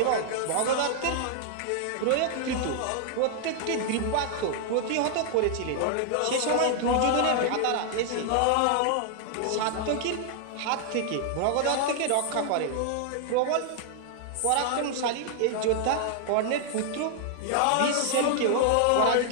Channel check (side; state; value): both; different; correlation 0.00